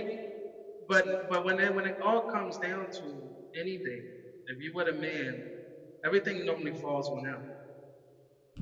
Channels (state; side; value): identical; both; correlation 1.00